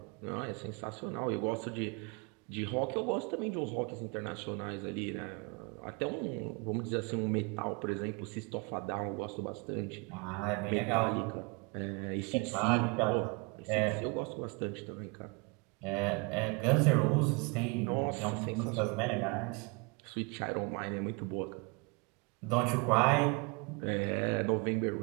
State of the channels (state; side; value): quieter; left; 30.4 dB